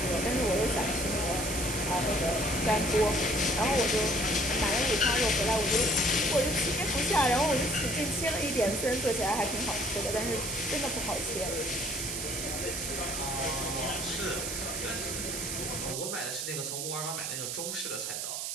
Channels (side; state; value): right; noise; hiss, 3 dB below the sound